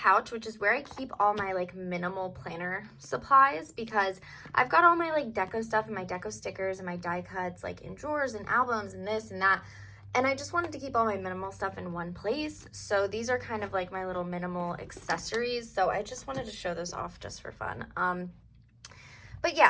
which is where I keep all my like minimal planner supplies, because I've got all my like deco stuff and my deco stickers and my die cuts like in drawers and albums and this and that. And I just wanted to keep all my minimal stuff in one place. So these are kind of like my little minimal accessories. So I just wanted to show those off just for fun. But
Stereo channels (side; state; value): both; identical; correlation 1.00